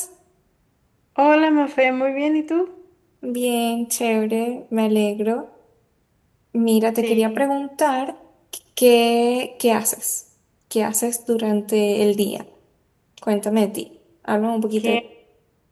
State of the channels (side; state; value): both; identical; correlation 1.00